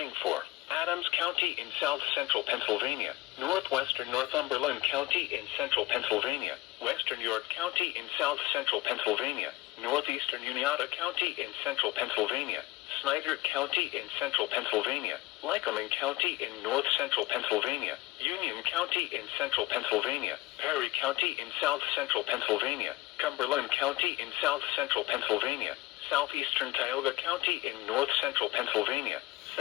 for Adams County in south-central Pennsylvania, northwestern Northumberland County in central Pennsylvania, western York County in south-central Pennsylvania, northeastern Uniata County in central Pennsylvania, Snyder County in central Pennsylvania, Lycoming County in north-central Pennsylvania, Union County in central Pennsylvania, Perry County in south-central Pennsylvania, Cumberland County in south-central Pennsylvania, southeastern Tioga County in north-central Pennsylvania,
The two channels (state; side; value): quieter; right; 18.9 dB